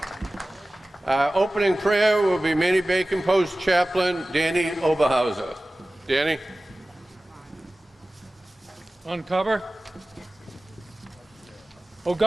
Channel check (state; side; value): normal; both; correlation 0.97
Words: Our opening prayer will be Manny Bacon Post Chaplain Danny Oberhauser. Danny? Uncover. O